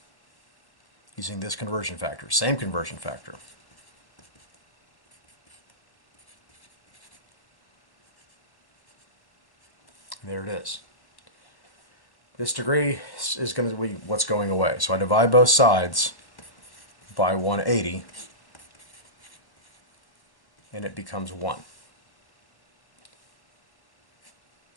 using this conversion factor, same conversion factor. There it is. This degree is going to be what's going away. So I divide both sides by 180, and it becomes 1.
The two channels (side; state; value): right; late; 1.1 ms